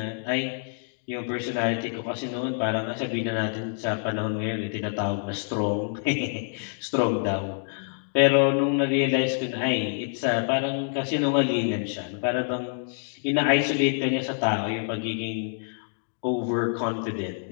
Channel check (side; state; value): right; silent; digital silence